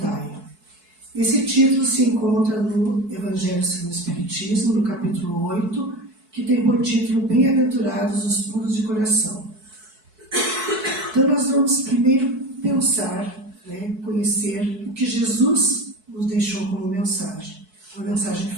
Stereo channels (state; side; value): late; left; 4.6 ms